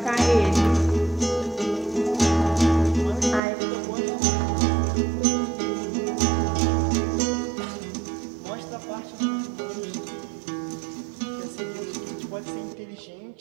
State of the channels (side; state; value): left; drops out; at 3.4 s